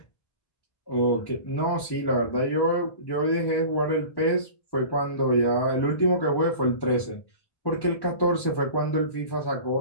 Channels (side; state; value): right; late; 1.1 ms